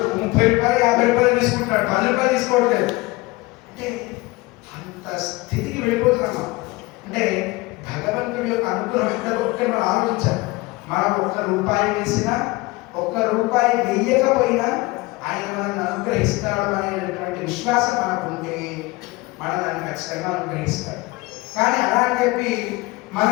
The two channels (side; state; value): right; quieter; 22.1 dB